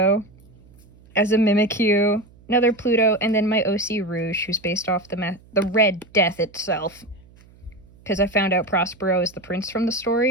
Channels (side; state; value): right; noise; hum, 26 dB below the sound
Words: as a Mimikyu, another Pluto, and then my OC Rouge, who's based off the Red Death itself. Because I found out Prospero is the prince from the